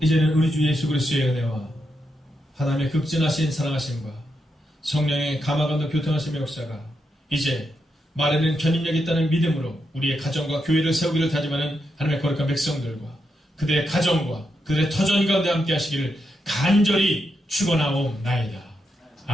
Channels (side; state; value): both; normal; correlation 0.83